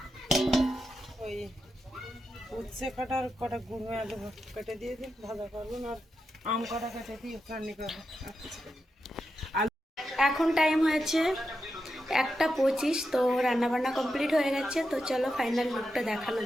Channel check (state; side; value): normal; both; correlation 0.87